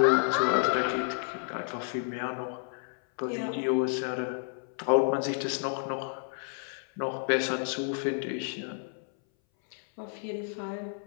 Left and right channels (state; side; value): silent; right; 57 dB below the other